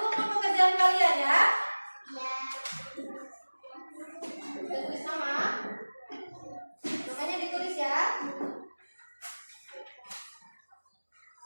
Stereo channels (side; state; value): both; inverted; correlation -1.00